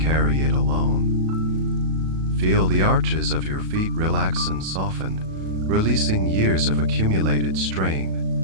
it alone. Feel the arches of your feet relax and soften, releasing years of accumulated strain.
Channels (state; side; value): late; left; 37 ms